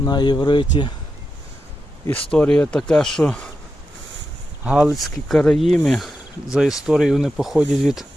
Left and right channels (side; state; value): both; normal; correlation 0.88